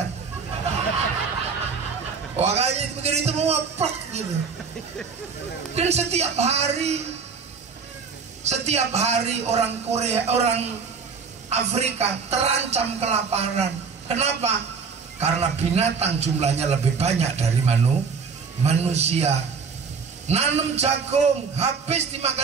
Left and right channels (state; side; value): quieter; left; 5.4 dB